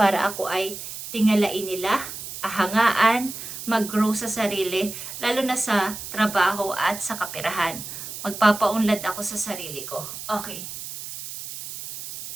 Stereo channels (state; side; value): noise; right; hiss, 9 dB below the sound